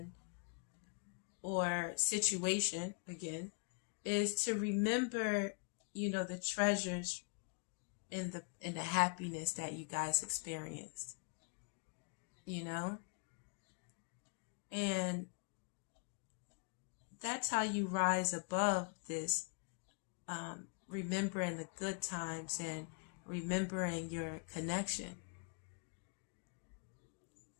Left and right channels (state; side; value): quieter; right; 36.7 dB